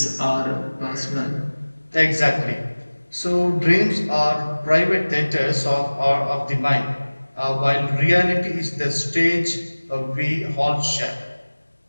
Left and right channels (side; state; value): both; inverted; correlation -1.00